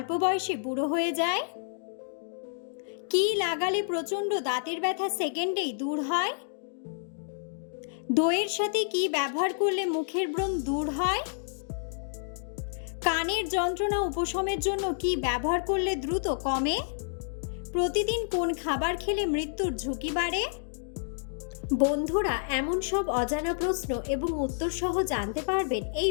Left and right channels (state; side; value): silent; right; digital silence